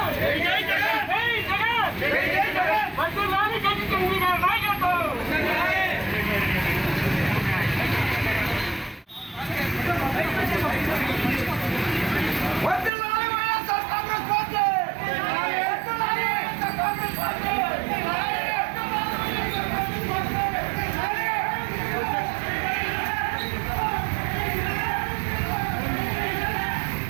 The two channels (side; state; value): left; drops out; at 12.9 s